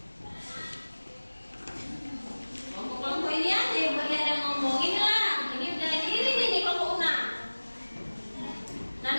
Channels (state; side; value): inverted; both; correlation -1.00